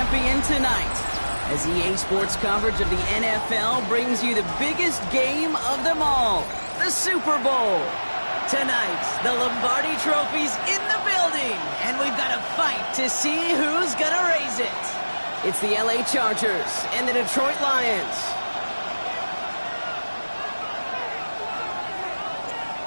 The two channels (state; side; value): inverted; both; correlation -1.00